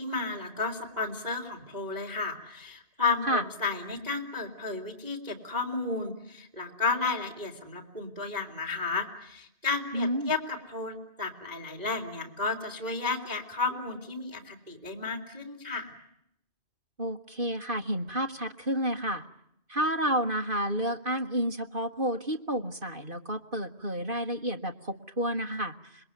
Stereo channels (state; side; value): late; left; 2.5 ms